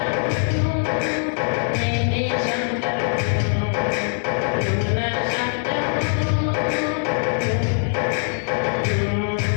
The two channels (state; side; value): silent; right; 57 dB below the other